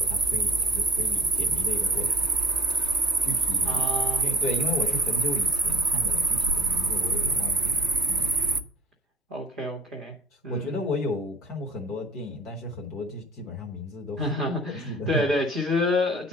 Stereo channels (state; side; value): normal; both; correlation 0.40